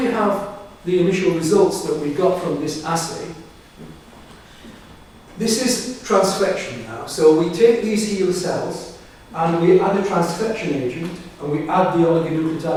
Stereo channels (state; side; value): identical; both; correlation 1.00